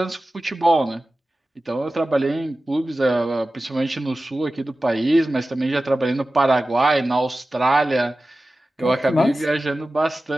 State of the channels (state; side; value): normal; both; correlation 0.95